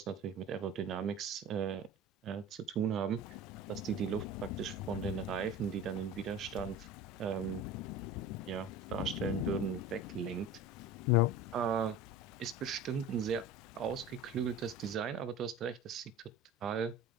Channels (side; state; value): both; normal; correlation 0.36